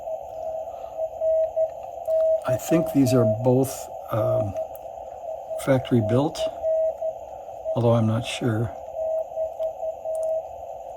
I think these are both factory built, although I'm not sure.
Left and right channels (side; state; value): both; identical; correlation 1.00